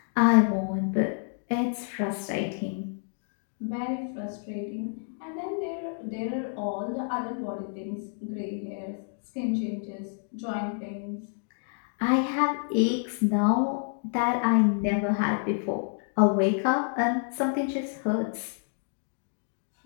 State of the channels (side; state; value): right; silent; 59 dB below the other